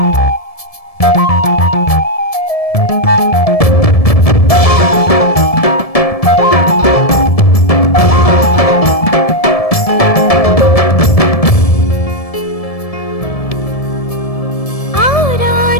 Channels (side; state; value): right; late; 1.7 ms